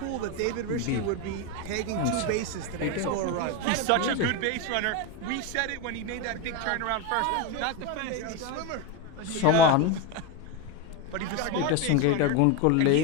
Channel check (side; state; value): both; different; correlation 0.04